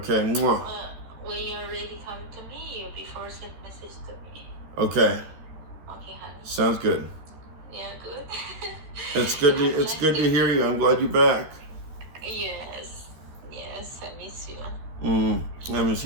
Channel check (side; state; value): left; late; 13 ms